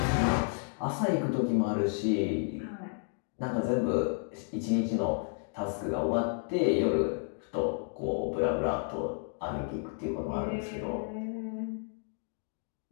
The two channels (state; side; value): silent; right; 57 dB below the other